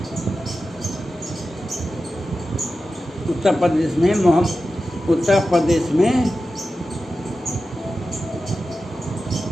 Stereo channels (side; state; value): both; normal; correlation 0.92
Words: उत्तर प्रदेश में